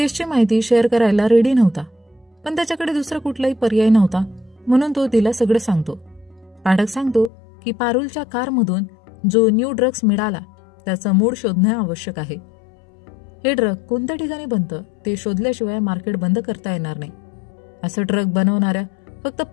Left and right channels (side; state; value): right; drops out; at 7.3 s